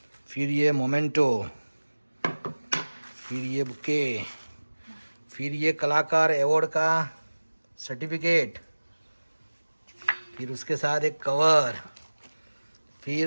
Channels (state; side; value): inverted; both; correlation -1.00